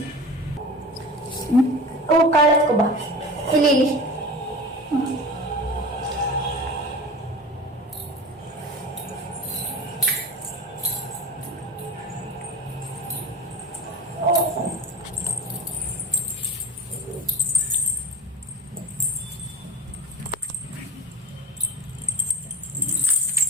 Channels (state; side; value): normal; both; correlation 0.34